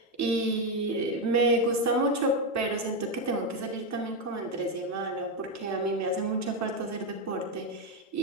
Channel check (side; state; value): both; normal; correlation 0.07